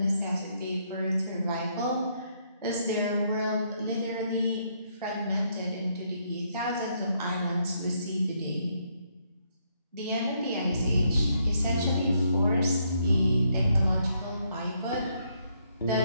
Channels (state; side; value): inverted; both; correlation -0.73